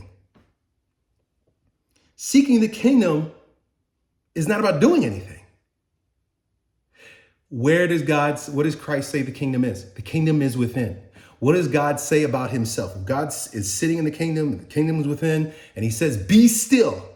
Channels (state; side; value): identical; both; correlation 1.00